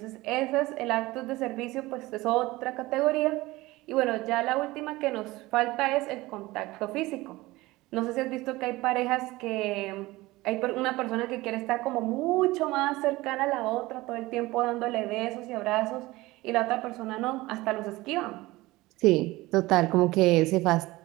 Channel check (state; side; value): quieter; left; 19.7 dB